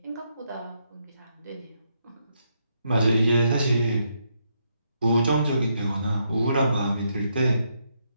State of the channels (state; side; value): inverted; both; correlation -0.78